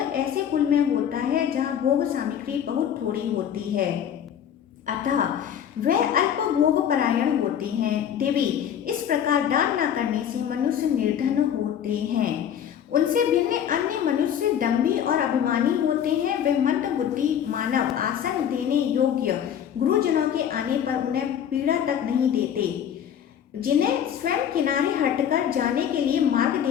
कुल में होता है जहाँ भोग सामग्री बहुत थोड़ी होती है। अतः वे अल्पभोग परायण होते हैं। देवी, इस प्रकार दान न करने से मनुष्य निर्धन होते हैं। उनसे भिन्न अन्य मनुष्य दंभी और अभिमानी होते हैं। वे मंद बुद्धि मानव आसन देने योग्य गुरुजनों के आने पर उन्हें पीड़ा तक नहीं देते। जिन्हें स्वयं किनारे हटकर जाने के लिए मार्ग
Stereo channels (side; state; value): right; quieter; 9.2 dB